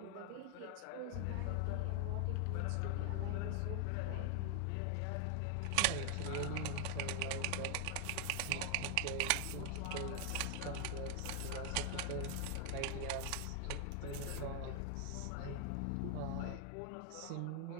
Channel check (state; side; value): different; both; correlation 0.00